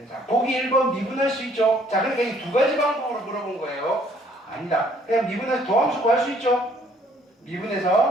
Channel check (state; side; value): normal; both; correlation 0.62